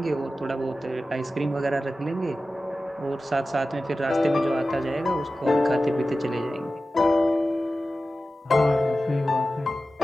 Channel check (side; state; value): both; normal; correlation 0.94